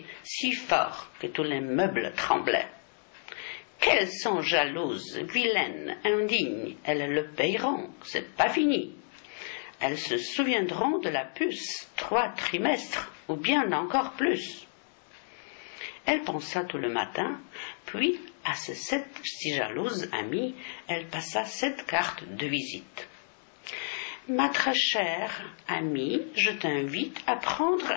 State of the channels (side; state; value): right; silent; digital silence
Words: si fort que tous les meubles tremblaient. Qu'elles sont jalouses, vilaines, indignes, elles le payeront, c'est pas fini. Elles se souviendront de la puce 3 trimestres, ou bien encore plus. Elle pensa tout le matin, puis à ses 7 si jalouses amies, elle passa 7 cartes de visite. « Ma très chère amie, je t'invite à prendre